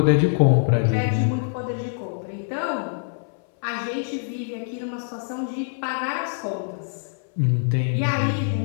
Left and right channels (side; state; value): right; silent; 62 dB below the other